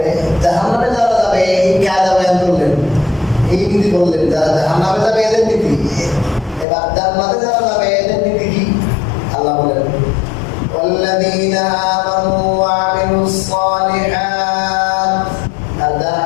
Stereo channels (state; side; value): drops out; right; at 6.7 s